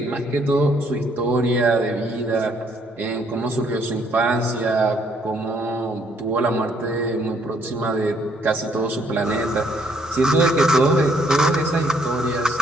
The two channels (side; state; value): both; normal; correlation 0.67